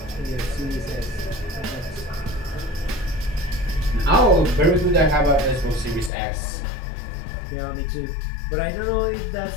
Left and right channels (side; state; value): right; drops out; at 6.1 s